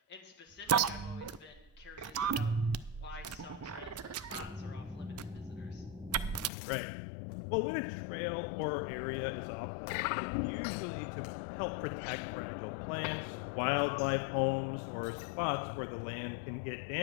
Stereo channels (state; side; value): drops out; right; at 6.5 s